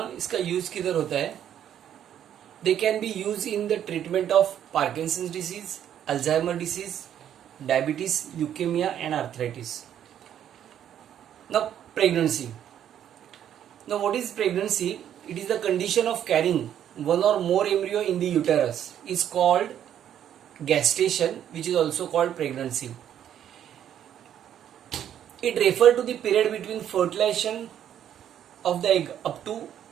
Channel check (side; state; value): left; quieter; 10.1 dB